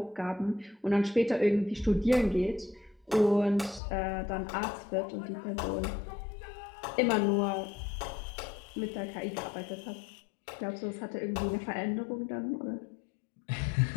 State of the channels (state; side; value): drops out; right; at 3.8 s